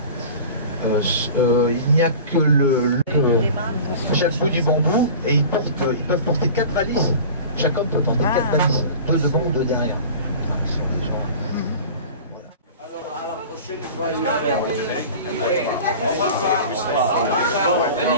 Il n'y a que chaque bout du bambou et ils peuvent porter 4 valises. Chaque homme peut porter 4 valises, 2 devant ou 2 derrière. Alors, à la prochaine fois, il va faire. Au revoir.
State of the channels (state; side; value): inverted; both; correlation -0.38